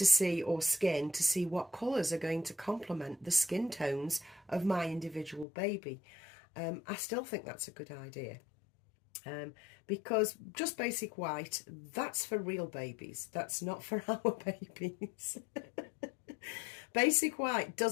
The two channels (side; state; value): right; drops out; at 5.5 s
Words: see, or skin, to see what colours are going to complement the skin tones of my individual baby. I still think that's a good idea, because just basic white, that's for real babies, that's not for our babies. Basic white